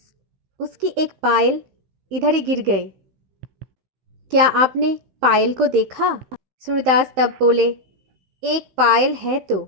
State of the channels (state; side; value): late; left; 16 ms